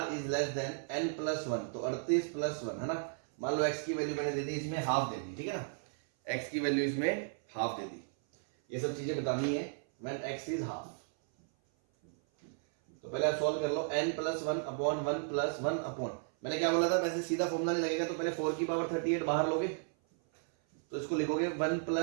is less than n plus 1, तो 38 प्लस 1 है ना। मान लो x की वैल्यू मैंने दे दी, इसमें हाफ दे दी, ठीक है ना, x की वैल्यू इसमें हाफ दे दी। ये सब चीजें बतानी है व्हेन x इज हाफ। तो पहले आप सॉल्व कर लो, n plus 1 upon 1 plus 1 upon, मैंने क्या बोला था, वैसे सीधा फॉर्मूला नहीं लगेगा, तो पहले 4 की पावर 38 बाहर लोगे तो इसको लिखोगे 1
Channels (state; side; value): silent; left; 55 dB below the other